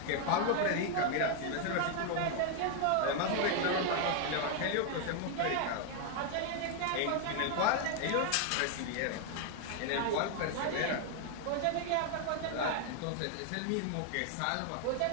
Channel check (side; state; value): both; different; correlation 0.00